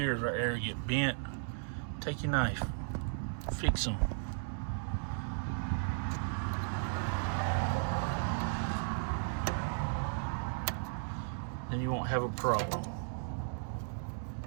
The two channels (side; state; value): left; silent; digital silence